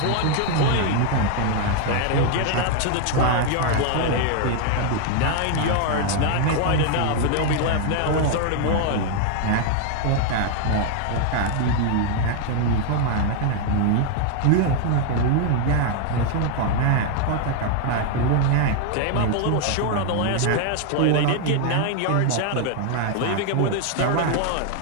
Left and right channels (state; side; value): different; both; correlation 0.00